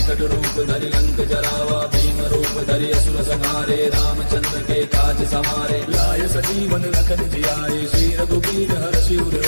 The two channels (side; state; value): both; inverted; correlation -1.00